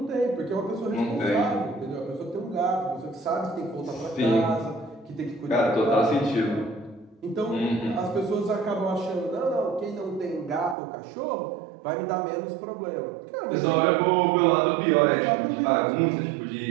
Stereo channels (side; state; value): left; drops out; at 10.8 s